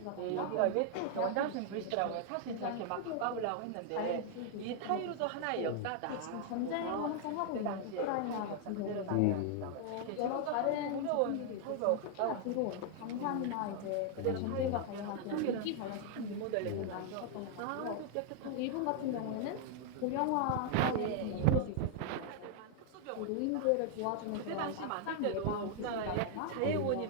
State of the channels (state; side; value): different; both; correlation 0.00